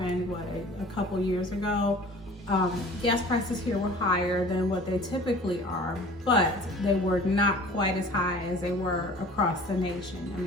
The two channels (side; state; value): both; normal; correlation 0.46